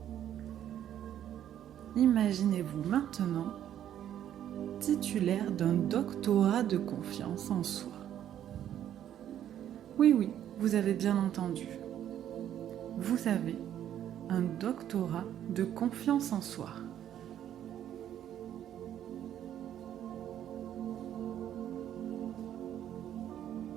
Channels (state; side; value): quieter; left; 10.8 dB